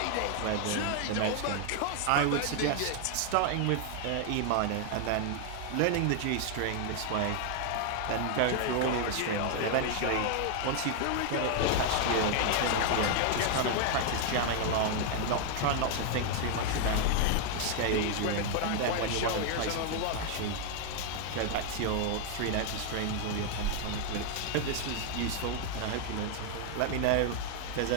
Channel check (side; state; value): both; different; correlation 0.00